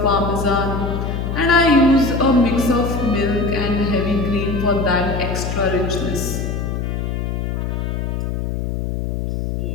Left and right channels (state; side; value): noise; left; hum, 2 dB below the sound